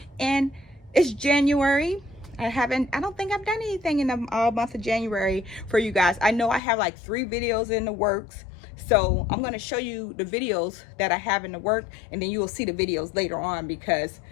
and it's January. I don't think I've done anything in the month of January for you guys. I know I have like 3 videos in the works, so I'm going to show you the videos that I have in the work, and then you will see the videos later on because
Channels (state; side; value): drops out; right; at 6.6 s